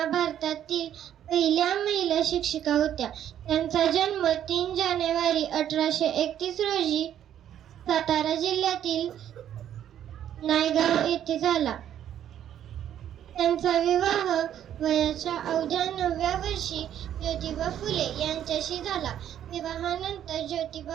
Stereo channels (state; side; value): quieter; left; 10.5 dB